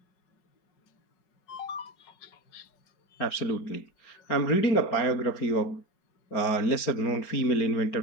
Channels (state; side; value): late; right; 4.4 ms